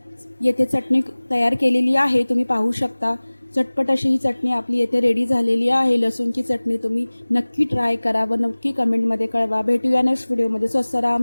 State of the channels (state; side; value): inverted; both; correlation -1.00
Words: येथे चटणी तयार केलेली आहे, तुम्ही पाहू शकता। चटपट अशी ही चटणी आपली येथे रेडी झालेली आहे। लसूणची चटणी तुम्ही नक्की ट्राय करा व नक्की कमेंटमध्ये कळवा। भेटूया नेक्स्ट व्हिडिओमध्ये। स्वस्त राहा,